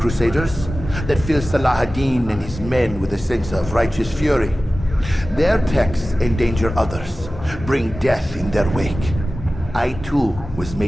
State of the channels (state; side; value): normal; both; correlation 0.96